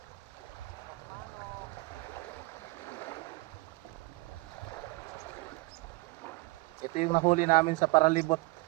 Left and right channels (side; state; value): left; quieter; 24.1 dB